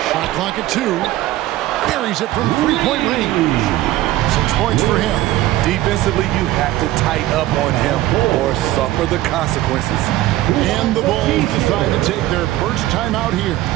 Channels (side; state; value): left; quieter; 15.7 dB